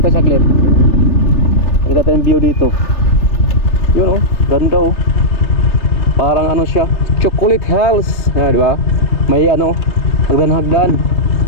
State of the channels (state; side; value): late; right; 3.3 ms